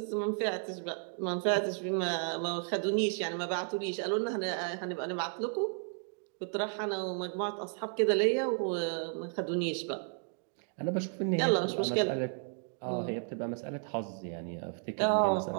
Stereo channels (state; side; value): silent; left; 56 dB below the other